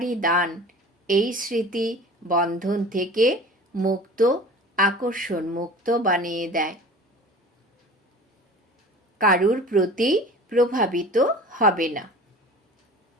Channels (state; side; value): normal; both; correlation 0.40